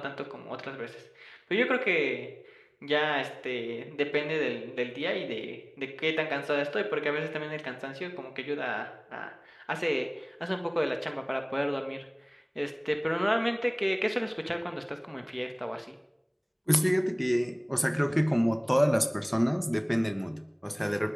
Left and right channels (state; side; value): identical; both; correlation 1.00